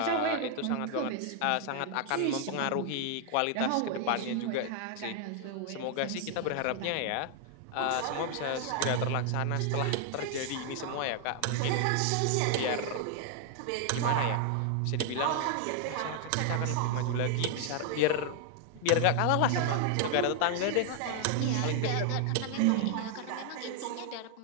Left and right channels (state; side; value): different; both; correlation 0.00